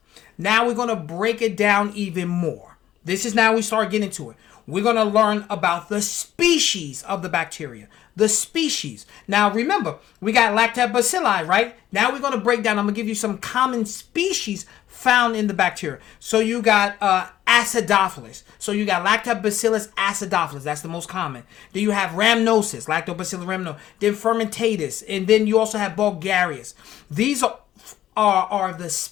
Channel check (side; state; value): right; quieter; 12.4 dB